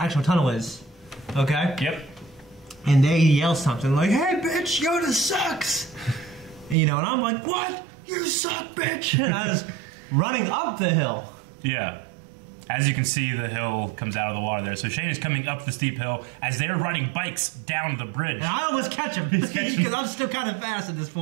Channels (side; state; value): left; drops out; at 6.8 s